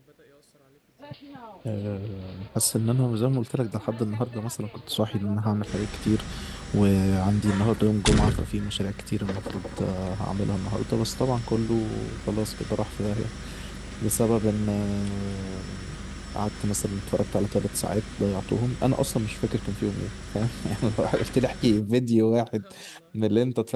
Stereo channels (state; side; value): identical; both; correlation 1.00